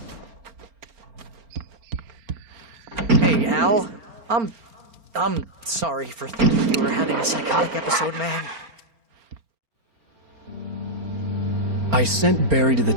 Hey, Al. I'm sorry for thinking you were having a psychotic episode, man. I sent Barry to the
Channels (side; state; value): left; late; 4.4 ms